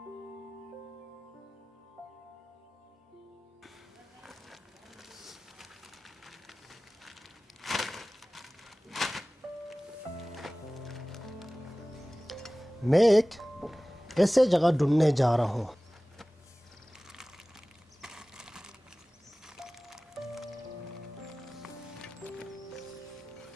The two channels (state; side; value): normal; both; correlation 0.98